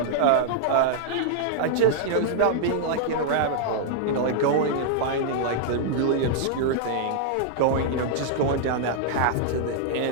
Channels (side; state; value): both; different; correlation -0.01